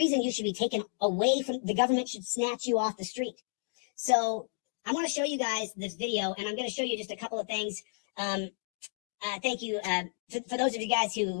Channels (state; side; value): silent; right; digital silence